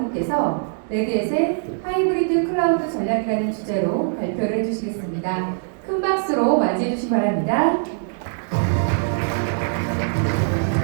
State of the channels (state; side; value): silent; left; digital silence